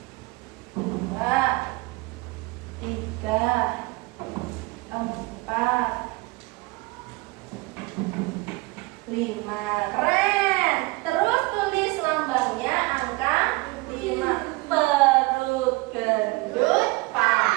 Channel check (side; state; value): left; quieter; 24.1 dB